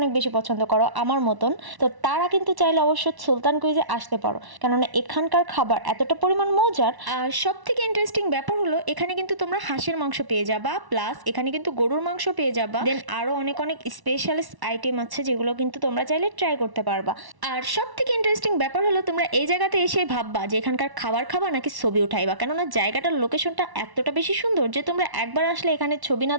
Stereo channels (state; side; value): late; left; 1.1 ms